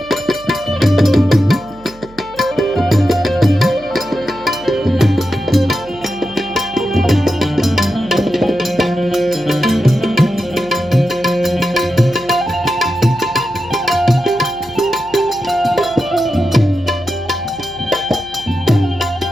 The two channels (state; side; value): noise; right; hum, 23 dB below the sound